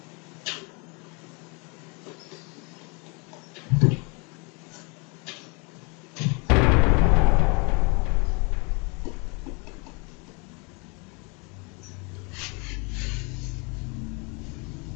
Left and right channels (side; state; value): right; quieter; 31.4 dB